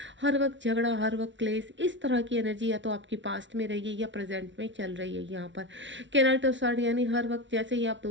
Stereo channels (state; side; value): late; left; 0.54 ms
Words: हर वक्त झगड़ा, हर वक्त क्लेश, इस तरह की एनर्जी या तो आपकी पास्ट में रही है या प्रेजेंट में चल रही है यहाँ पर। कैनाइट ऑफ स्वार्ड यानी हर वक्त जैसे ही आप